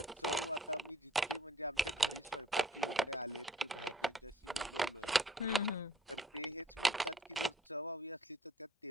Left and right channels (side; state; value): both; normal; correlation 0.58